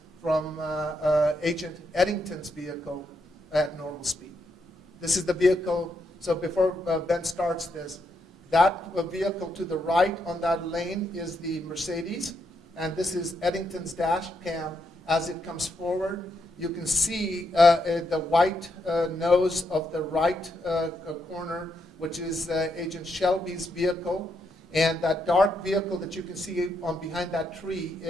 from Agent Eddington's vehicle at normal speed. This is the vehicle, so before Ben starts this, that vehicle to the right on that lane is the Mercedes, and this is Eddington's dash cam as it comes forward. You can see the white nose of the right corner, which is Agent Shelby's vehicle. And that dark vehicle that you can see on behind that tree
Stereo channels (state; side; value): normal; both; correlation 0.80